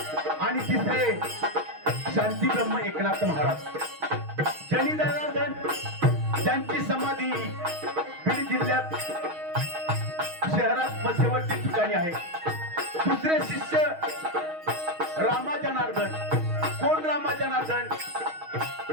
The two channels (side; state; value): left; late; 6.3 ms